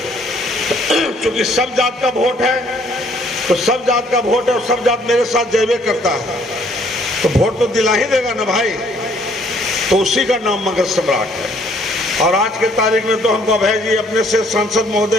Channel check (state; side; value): normal; both; correlation 0.63